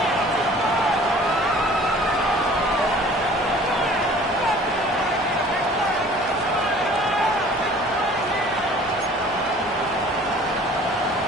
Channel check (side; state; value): both; normal; correlation 0.49